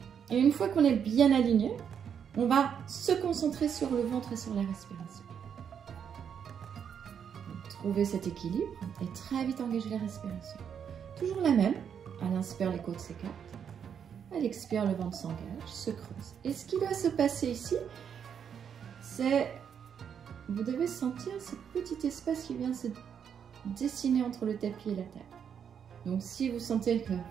Et une fois qu'on est bien aligné, on va se concentrer sur le ventre et sur la respiration. Donc, trouver cet équilibre et très vite engager la respiration. Toujours la même. À l'inspire, les côtes s'écartent. À l'expire, le ventre s'engage, se creuse. Et ce qui doit se passer ici, c'est vous devez sentir ce petit espace qui vient se dessiner entre le tapis et la table. Donc si vous sentez que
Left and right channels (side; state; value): left; quieter; 7.8 dB